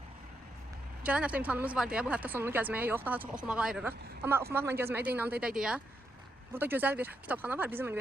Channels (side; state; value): both; normal; correlation 0.82